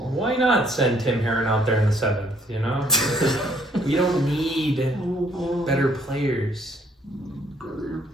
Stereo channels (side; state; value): both; normal; correlation 0.65